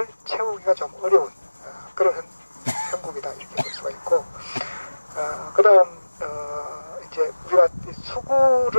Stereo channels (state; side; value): inverted; both; correlation -1.00